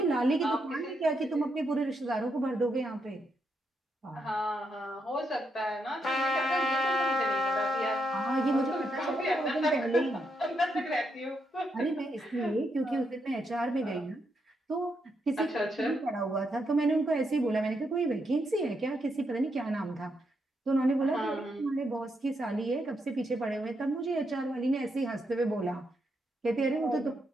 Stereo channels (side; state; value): both; normal; correlation 0.80